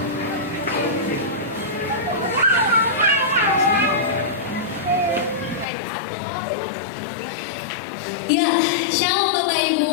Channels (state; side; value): drops out; right; at 5.7 s